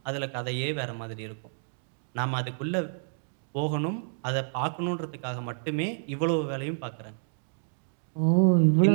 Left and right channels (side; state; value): left; silent; digital silence